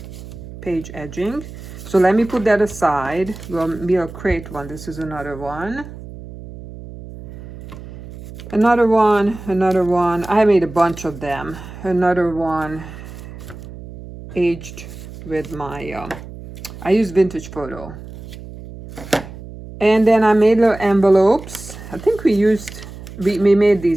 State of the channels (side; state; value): right; noise; hum, 14 dB below the sound